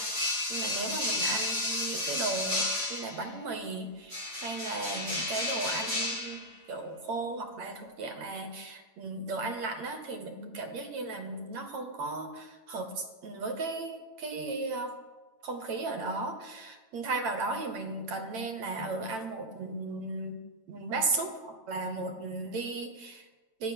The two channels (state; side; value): late; left; 9.0 ms